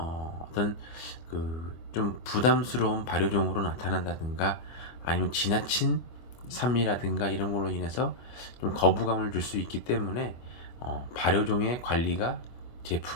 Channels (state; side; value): late; right; 24 ms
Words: 그 좀 부담스러운 발효종으로 나타난다든가 아니면 지나친 산미라든가 이런 걸로 인해서 좀 거부감을 줄 수 있기 때문에 발효종의 관리가